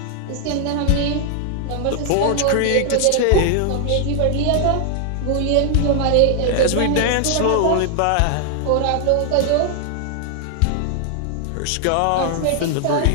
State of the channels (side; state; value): both; different; correlation 0.00